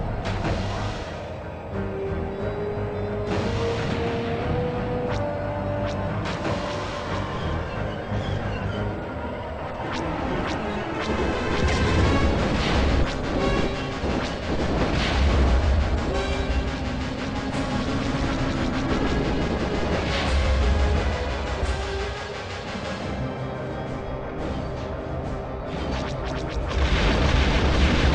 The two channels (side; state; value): both; identical; correlation 1.00